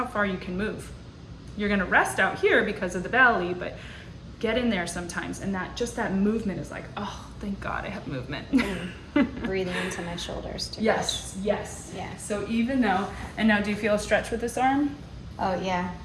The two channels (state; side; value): identical; both; correlation 1.00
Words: far you can move. You're gonna rest out here because of the belly, but get in there sometimes, and that movement is like, oh, thank God I have movement. Breathing into my shoulders too. Yes, yes. Yeah. So even though, and now do you feel a stretch with this arm? Oh, yeah.